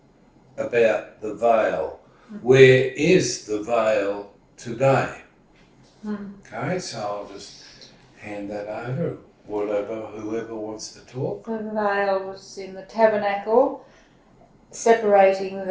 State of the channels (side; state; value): both; identical; correlation 1.00